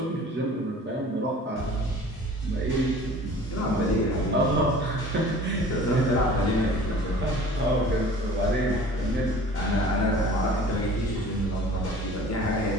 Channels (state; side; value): normal; both; correlation 0.45